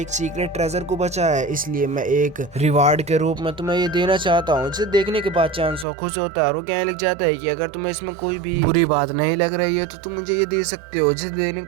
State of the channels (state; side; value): drops out; left; at 5.9 s